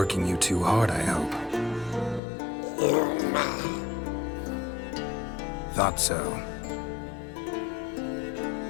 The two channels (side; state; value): right; drops out; at 2.2 s